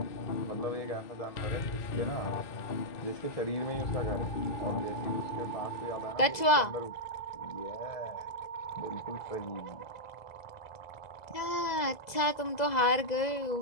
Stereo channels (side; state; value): right; late; 2.0 ms